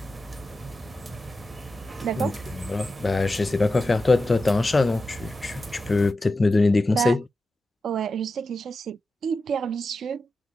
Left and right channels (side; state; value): both; normal; correlation 0.91